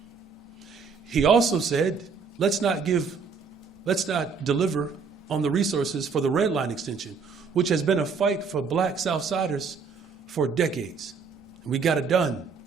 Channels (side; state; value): left; quieter; 5.3 dB